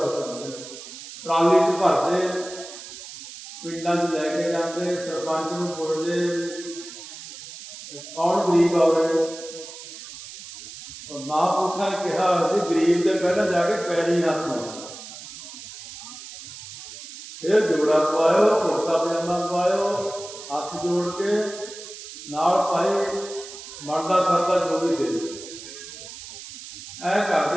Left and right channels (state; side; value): noise; right; hiss, 13 dB below the sound